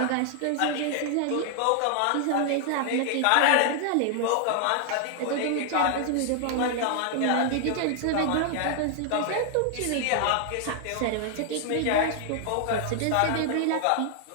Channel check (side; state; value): both; different; correlation 0.00